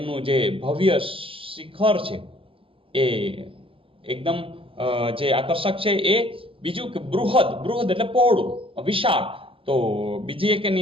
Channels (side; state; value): left; late; 0.26 ms